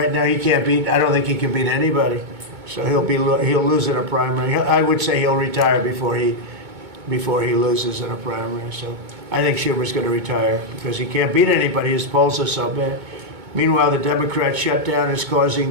now he can't beat, I don't think he can beat anybody. So he'll lose in a primary. I would say he'll retire before he loses in a primary. So I think Schumer's going to retire because he can't beat anybody. His polls are so bad. Meanwhile, the Democrat shutdown is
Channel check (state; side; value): late; left; 2.2 ms